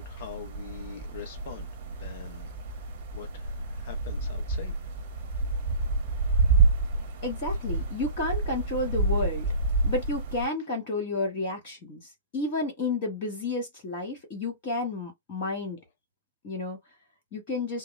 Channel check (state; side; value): inverted; both; correlation -0.38